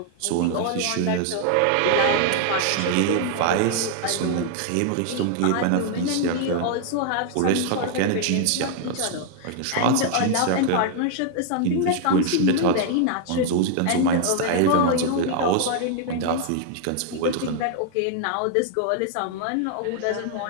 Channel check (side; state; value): both; different; correlation 0.00